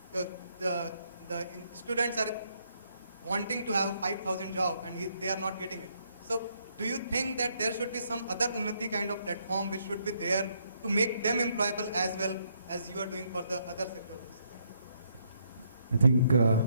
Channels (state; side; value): inverted; both; correlation -0.73